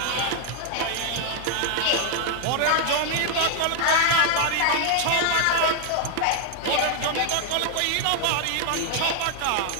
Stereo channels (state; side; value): different; both; correlation 0.00